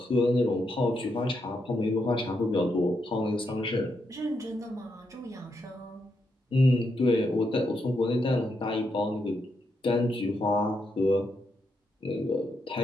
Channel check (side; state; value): both; normal; correlation 0.82